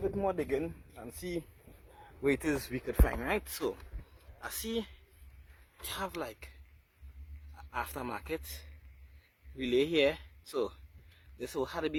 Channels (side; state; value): both; identical; correlation 1.00